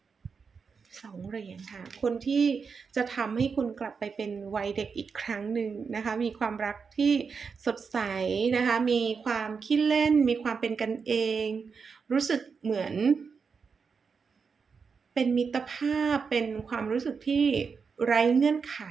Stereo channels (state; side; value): quieter; left; 5.5 dB